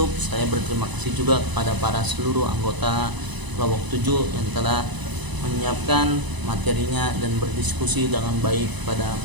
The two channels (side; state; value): left; late; 1.0 ms